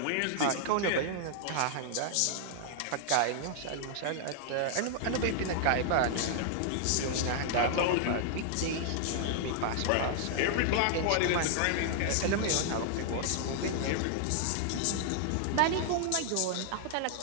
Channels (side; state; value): both; different; correlation -0.01